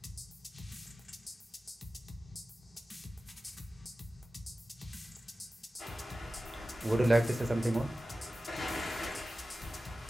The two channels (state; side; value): normal; both; correlation 0.95